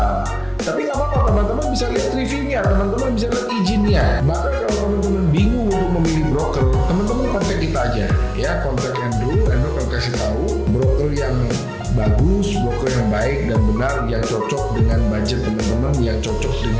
Tapi nggak apa-apa, teman-teman bisa lihat reviewnya, teman-teman bisa lihat izinnya. Bahkan kalau teman-teman bingung untuk memilih broker, teman-teman kontak kita aja, ya, kontak Andrew akan kasih tahu broker yang bagus, broker yang baik dan benar, yang cocok dengan budget teman-teman, yang cocok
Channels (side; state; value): both; identical; correlation 1.00